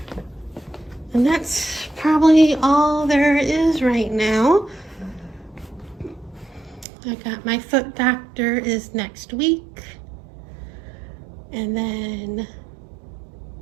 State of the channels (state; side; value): drops out; left; at 6.9 s